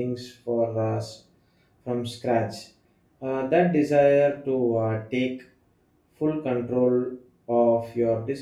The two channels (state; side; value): identical; both; correlation 1.00